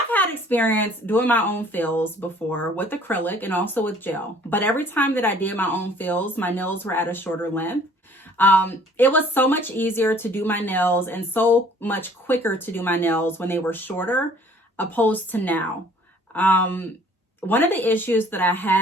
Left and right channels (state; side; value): normal; both; correlation 0.55